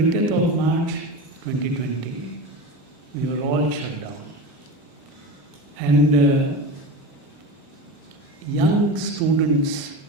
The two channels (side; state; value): both; normal; correlation 0.26